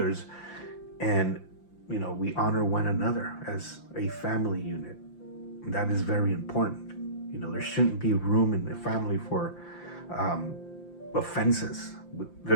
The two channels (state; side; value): late; right; 5.8 ms